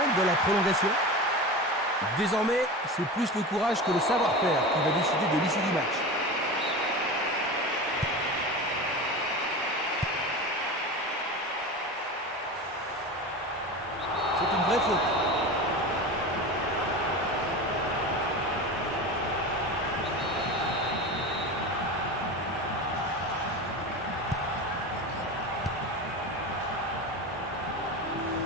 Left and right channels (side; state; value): both; normal; correlation 0.28